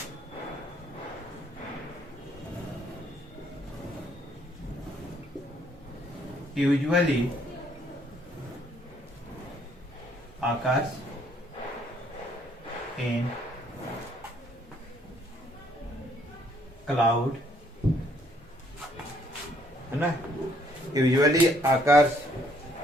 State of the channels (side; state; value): both; normal; correlation 0.66